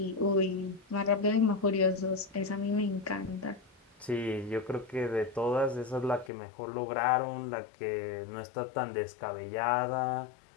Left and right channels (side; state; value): right; drops out; at 6.3 s